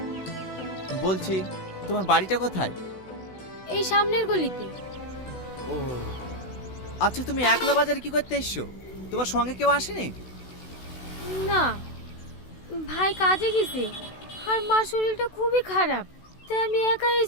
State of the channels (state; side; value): late; right; 16 ms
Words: বলছি, তোমার বাড়িটা কোথায়? এই সামনের গলিতে। ও আচ্ছা, তুমি একলা বাজারে কি করতে এসছো? তোমার সঙ্গে কেউ আসেনি? না, ভাই কাজে গেছে আর মার শরীরটা খুবই খারাপ, তাই আমি একা